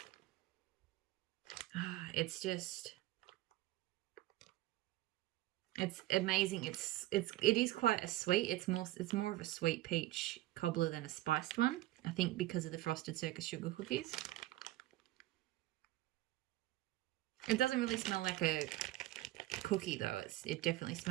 It's just... It's amazing. It is quite a sweet. It's more of a sweet peach cobbler than a spiced one. I think because of the Frosted Circus Sugar Cookies. It doesn't really smell like a cookie though. It definitely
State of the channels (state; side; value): quieter; left; 16.4 dB